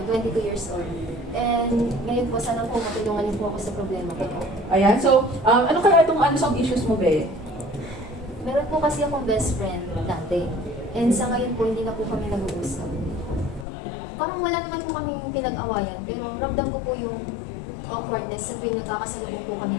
22 years old. And ngayon po, sana po matulungan niyo po ako sa problema ko. Ayan. So, ano kaya itong unsolved issues mo, be? Meron po kasi akong best friend dati. And sa ngayon po, hindi na po kami nag-uusap. Parang wala naman po kami pinag-awayan, pero ramdam ko po yung awkwardness sa tuwing nagkakasalubong po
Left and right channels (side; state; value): right; drops out; at 13.7 s